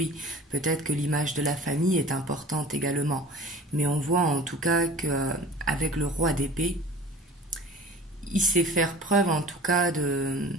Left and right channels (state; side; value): normal; both; correlation 0.43